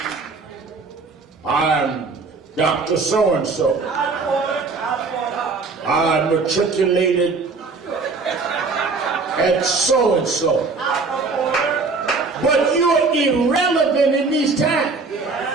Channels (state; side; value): quieter; left; 4.2 dB